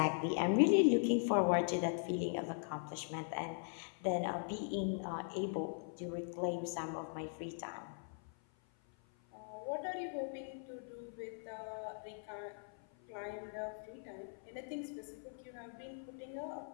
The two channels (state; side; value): silent; right; 51 dB below the other